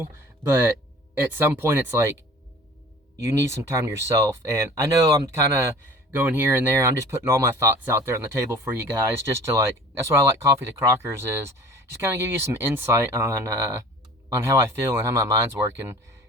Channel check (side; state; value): both; normal; correlation 0.45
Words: but at some point it's like, you need some time to yourself. And I know I'm kind of going here and there. I'm just putting all my thoughts out there on the table for you guys, just to that's what I like Coffee to Crockers, is just kind of give you some insight on how I feel and how my mind's working.